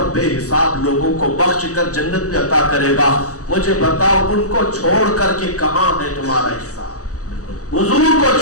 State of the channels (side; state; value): right; late; 0.66 ms